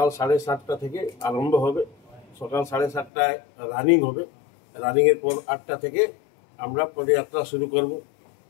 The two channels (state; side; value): drops out; right; at 3.1 s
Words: 7:30টা থেকে আরম্ভ হবে। সকাল 7:30টায় রানিং হবে, রানিংয়ের পর 8টা থেকে আমরা পদযাত্রা শুরু করব